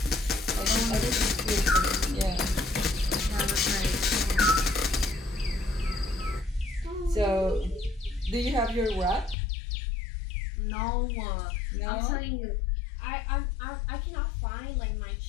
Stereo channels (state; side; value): drops out; right; at 9.3 s